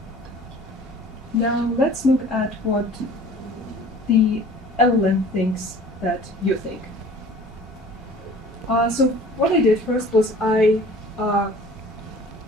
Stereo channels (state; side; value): normal; both; correlation 0.47